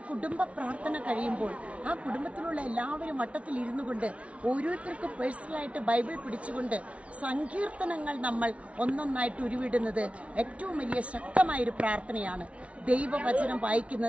കുടുംബ പ്രാർത്ഥന കഴിയുമ്പോൾ ആ കുടുംബത്തിലുള്ള എല്ലാവരും വട്ടത്തിൽ ഇരുന്നു കൊണ്ട് ഓരോരുത്തർക്കും പേഴ്സണലായിട്ട് ബൈബിൾ പിടിച്ചുകൊണ്ട് സങ്കീർത്തനങ്ങൾ നമ്മൾ ഒന്നൊന്നായിട്ട് ഉരുവിടുന്നത് ഏറ്റവും വലിയ ശക്തമായൊരു പ്രാർത്ഥനയാണ്. ദൈവവചനം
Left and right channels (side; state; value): left; late; 0.063 ms